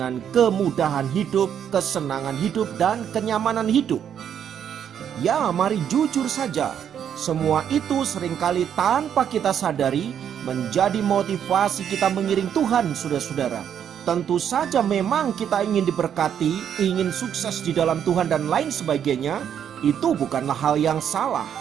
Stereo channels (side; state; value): left; quieter; 8.9 dB